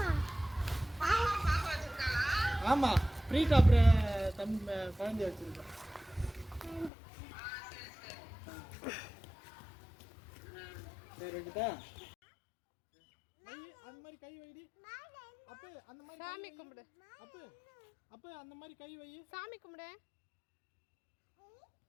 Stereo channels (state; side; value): drops out; right; at 6.9 s